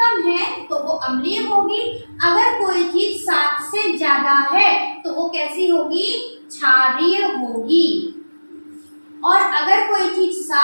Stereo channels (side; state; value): both; inverted; correlation -1.00